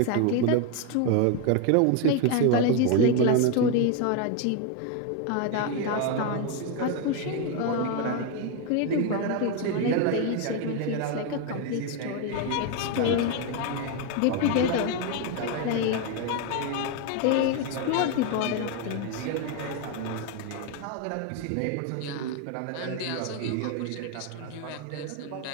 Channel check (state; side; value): different; both; correlation 0.02